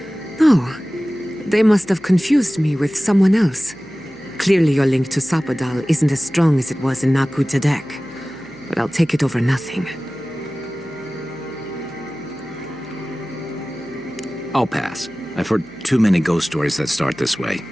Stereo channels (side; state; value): left; noise; hum, 29 dB below the sound